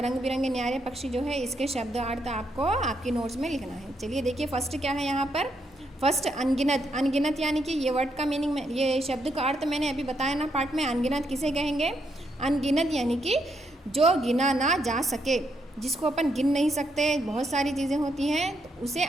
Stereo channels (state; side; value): normal; both; correlation 0.78